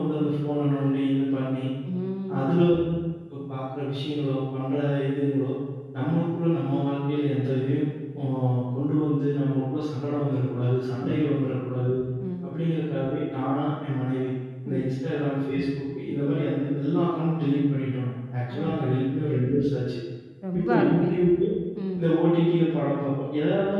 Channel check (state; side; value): identical; both; correlation 1.00